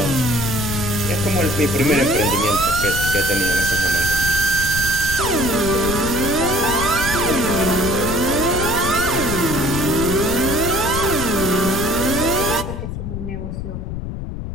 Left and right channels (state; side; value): noise; left; rumble, 6 dB below the sound